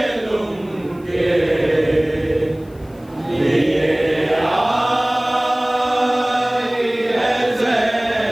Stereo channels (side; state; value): left; noise; hiss, 30 dB below the sound